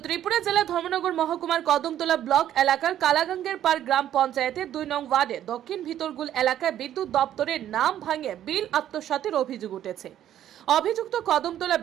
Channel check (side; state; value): left; quieter; 11.4 dB